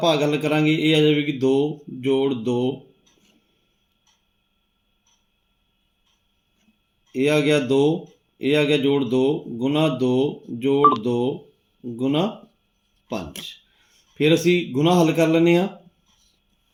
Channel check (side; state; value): both; identical; correlation 1.00